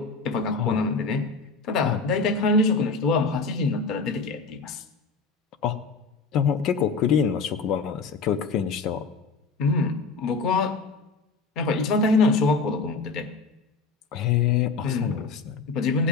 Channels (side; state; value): right; quieter; 4.3 dB